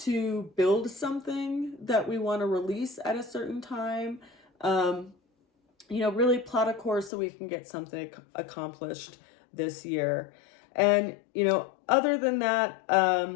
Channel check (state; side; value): drops out; right; at 7.1 s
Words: build something that we want to release at a certain time. Really plot a course so we can get something accomplished this year. And, other than that,